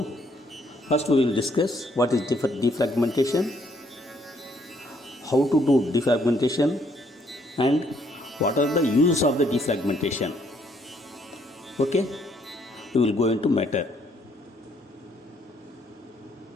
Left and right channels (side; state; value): both; normal; correlation 0.68